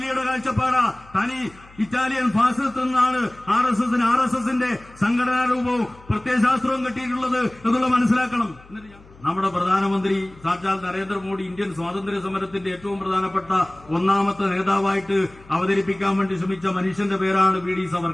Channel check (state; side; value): noise; left; hum, 24 dB below the sound